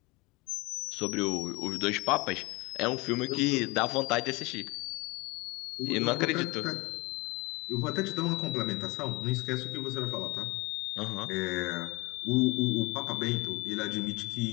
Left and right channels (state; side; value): quieter; right; 24.6 dB